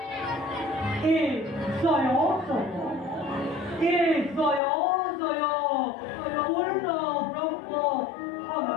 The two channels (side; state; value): right; drops out; at 4.6 s